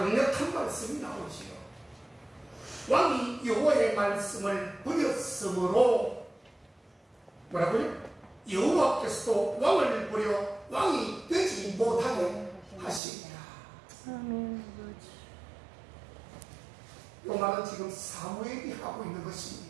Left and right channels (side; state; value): left; drops out; at 13.0 s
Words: 말씀이 나오지요. 왕이 여호와의 말씀을 버렸으므로, 뭐라고요? 여호와께서도 왕을 버려 왕이 되지 못하게 하시니라. 이 말은 지금 사무엘이 하고 있는